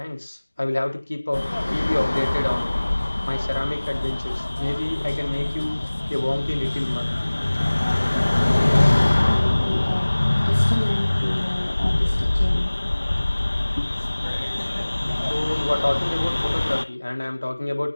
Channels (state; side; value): inverted; both; correlation -1.00